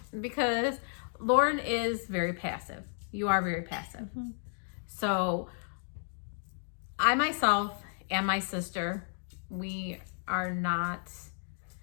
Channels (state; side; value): silent; right; digital silence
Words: because Lauren is very passive. You are very passive. Mm-hmm. So I myself and my sister, we are not